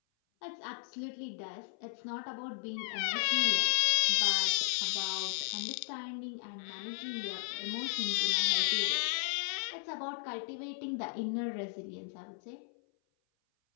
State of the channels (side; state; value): right; silent; 55 dB below the other